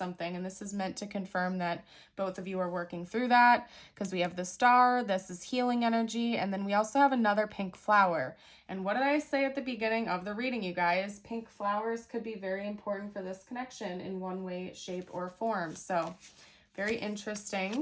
And this is meant to confirm that both of you are working through that, because we have the star, this is healing energy, and then we also have another pink flower. And what did I say at the beginning of the reading, you guys? Pink flowers could be very important for this connection in one way, shape, or form. So very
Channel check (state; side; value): identical; both; correlation 1.00